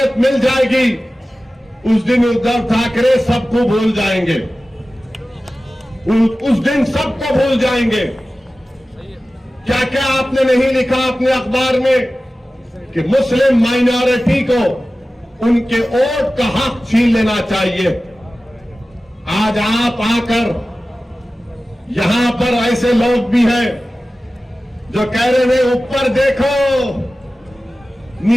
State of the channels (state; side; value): normal; both; correlation 0.96